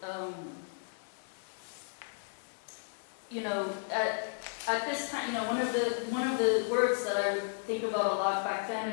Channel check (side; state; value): right; silent; digital silence